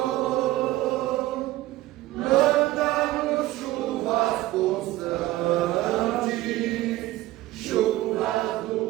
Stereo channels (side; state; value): left; quieter; 16.9 dB